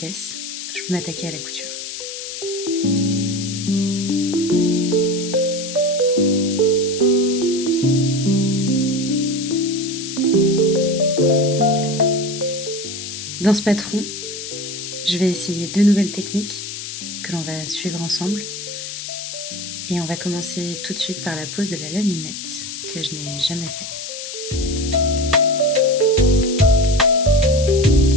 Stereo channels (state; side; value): noise; left; hiss, 8 dB below the sound